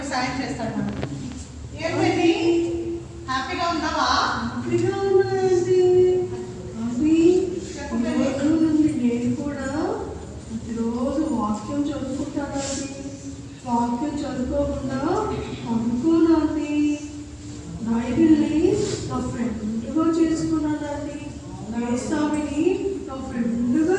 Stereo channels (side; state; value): both; identical; correlation 1.00